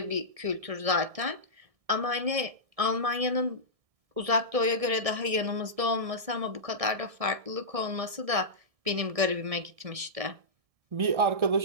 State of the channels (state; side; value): late; left; 1.6 ms